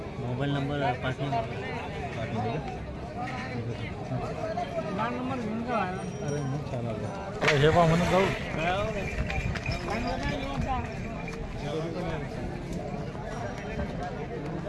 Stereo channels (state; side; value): identical; both; correlation 1.00